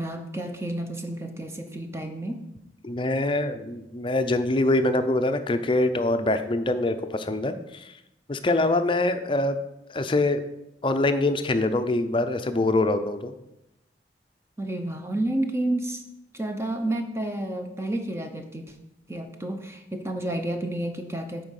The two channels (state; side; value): normal; both; correlation 0.60